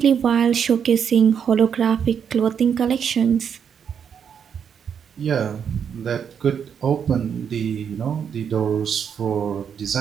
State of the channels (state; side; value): quieter; left; 7.6 dB